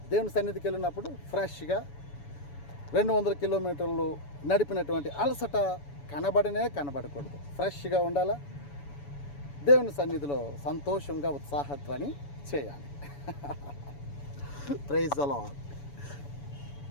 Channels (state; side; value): late; right; 7.0 ms